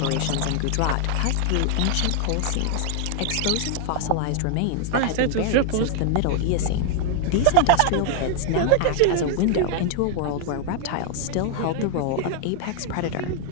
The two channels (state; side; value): different; both; correlation 0.00